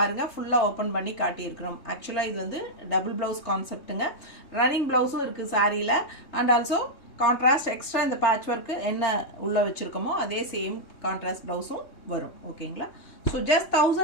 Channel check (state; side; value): late; right; 3.2 ms